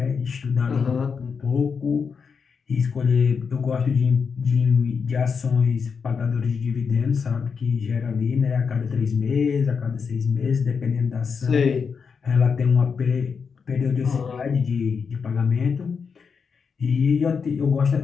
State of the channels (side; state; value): right; quieter; 5.8 dB